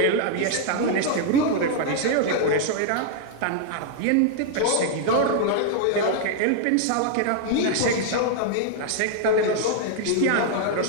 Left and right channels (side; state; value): both; different; correlation 0.00